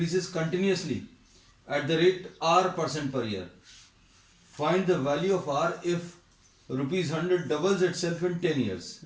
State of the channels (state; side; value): identical; both; correlation 1.00